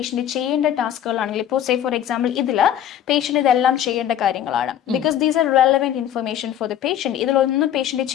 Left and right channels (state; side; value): quieter; right; 10.6 dB